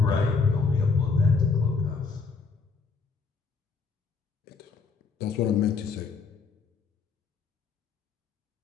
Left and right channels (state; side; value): quieter; right; 4.7 dB